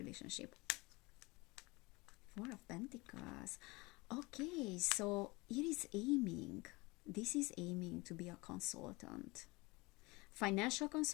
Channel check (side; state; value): right; quieter; 24.2 dB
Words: Four of Pentacles. Okay, so it is aiming. This is aiming to be a consultant, financial